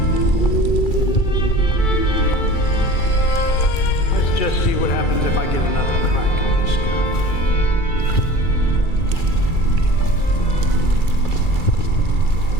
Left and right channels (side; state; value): right; late; 2.3 ms